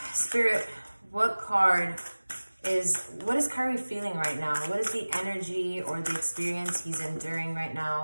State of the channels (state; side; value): inverted; both; correlation -1.00